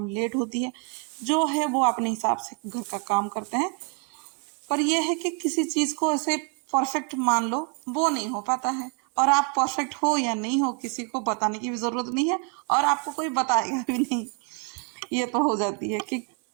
लेट होती है। जो है वो अपने हिसाब से घर का काम करते हैं। पर यह है कि किसी चीज को ऐसे परफेक्ट मान लो, वो नहीं हो पाता है। और आप परफेक्ट हो या नहीं हो, किसी को बताने की भी जरूरत नहीं है, और आपको कोई बताएगा भी नहीं। ये तो हो जाती है कि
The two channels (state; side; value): quieter; left; 33.6 dB